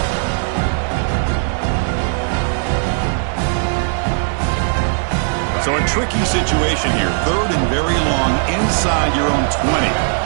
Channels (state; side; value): silent; left; digital silence